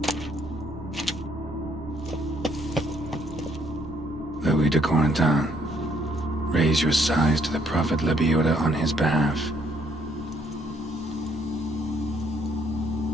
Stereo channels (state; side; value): normal; both; correlation 0.69